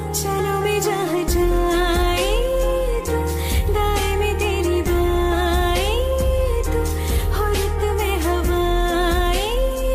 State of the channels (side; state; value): both; identical; correlation 1.00